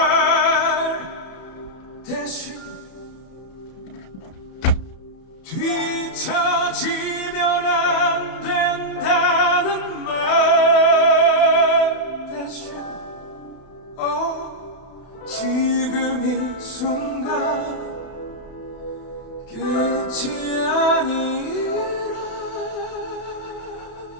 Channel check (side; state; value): right; late; 31 ms